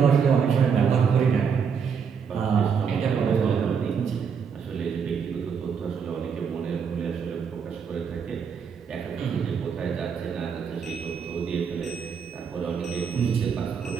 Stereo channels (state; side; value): quieter; left; 6.6 dB